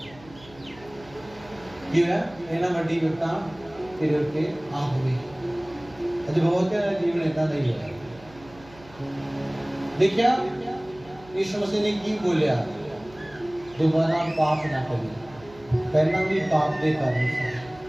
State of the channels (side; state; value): right; noise; hum, 23 dB below the sound